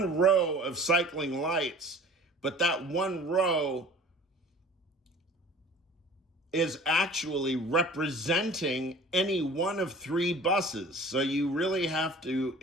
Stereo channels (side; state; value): both; normal; correlation 0.46